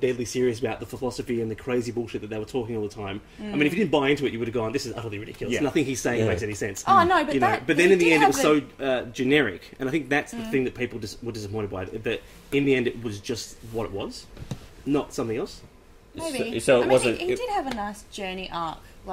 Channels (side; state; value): both; identical; correlation 1.00